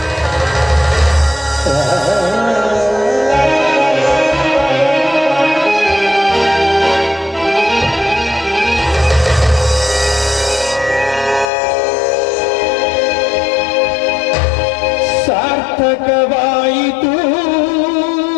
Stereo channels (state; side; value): drops out; right; at 11.5 s